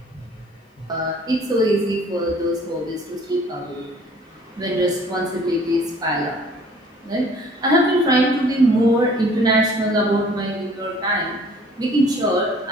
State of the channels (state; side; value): normal; both; correlation 0.54